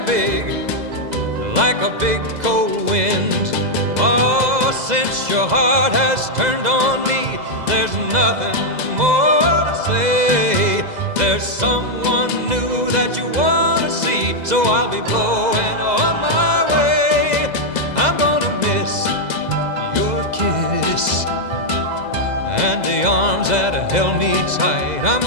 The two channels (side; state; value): left; late; 2.0 ms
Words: big, like a big cold wind. Oh, since your heart has turned on me, there's nothing more to say. There's someone new that you want to see, so I'll be blowing on my way. I'm gonna miss your kiss and the arms that held me tight. I'm